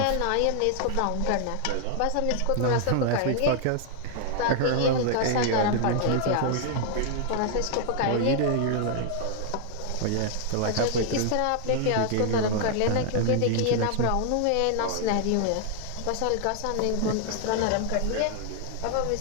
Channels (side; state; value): both; different; correlation 0.00